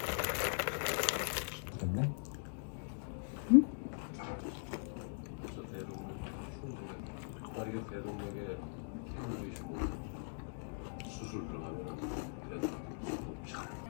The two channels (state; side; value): silent; right; digital silence